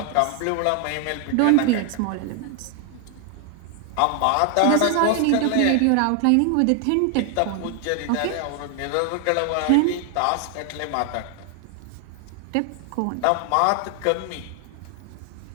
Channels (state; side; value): different; both; correlation 0.00